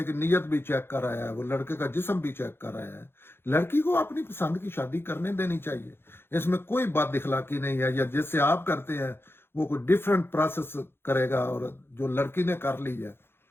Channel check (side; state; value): right; late; 0.11 ms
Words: کی نیت بھی چیک کر رہا ہے، وہ لڑکے کا جسم بھی چیک کر رہا ہے. لڑکی کو اپنی پسند کی شادی کرنے دینی چاہیے، اس میں کوئی بات اخلاقی نہیں ہے. یا جس سے آپ کرتے ہیں وہ کوئی ڈیفرنٹ پروسیس کرے گا، اور جو لڑکی نے کر لی ہے